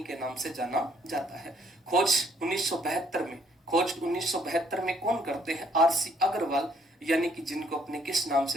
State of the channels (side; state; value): both; normal; correlation 0.66